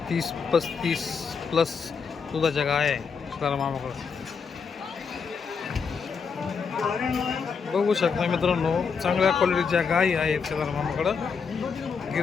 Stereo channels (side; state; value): right; quieter; 5.7 dB